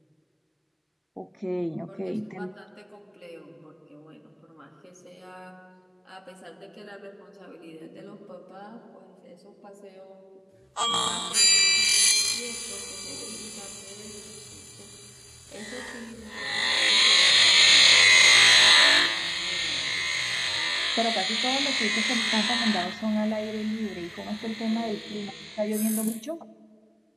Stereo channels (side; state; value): both; identical; correlation 1.00